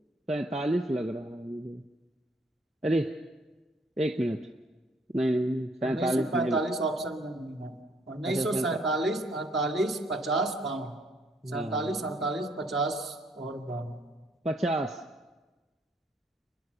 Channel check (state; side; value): normal; both; correlation 0.66